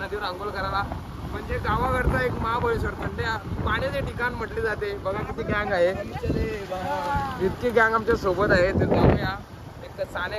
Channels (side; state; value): both; identical; correlation 1.00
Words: आंघोळ करायला. म्हणजे गावाकडचं एक महाबळेश्वर थंड पाण्याचे ठिकाण म्हटले जाते. बघा किती गँग आहे, इतकी गँग आमच्या सोबत आहे. तर जाऊया. एक साने